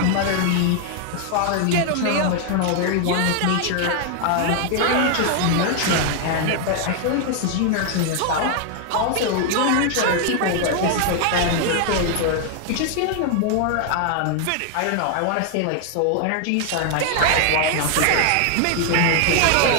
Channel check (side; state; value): both; different; correlation 0.00